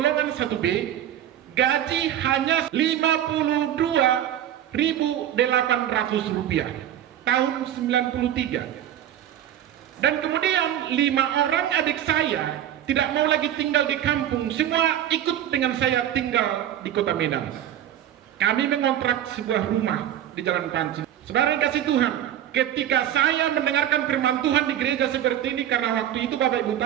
1B, gaji hanya Rp52.800 tahun 93. Dan kemudian 5 orang adik saya tidak mau lagi tinggal di kampung, semua ikut dengan saya tinggal di Kota Medan. Kami mengontrak sebuah rumah di Jalan Panci. Saudara yang kasih Tuhan, ketika saya mendengarkan firman Tuhan di gereja seperti ini, karena waktu itu Bapak Ibu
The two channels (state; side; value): quieter; left; 11.4 dB